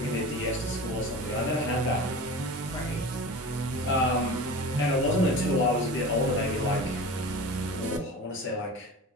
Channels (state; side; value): normal; both; correlation 0.34